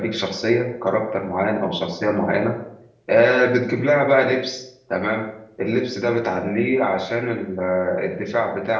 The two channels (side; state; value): both; identical; correlation 1.00